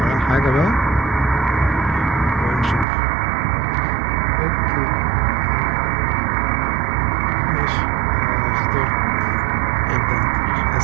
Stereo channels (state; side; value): drops out; left; at 2.9 s